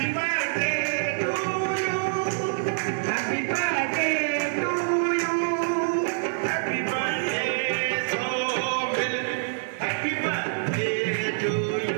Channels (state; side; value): silent; left; digital silence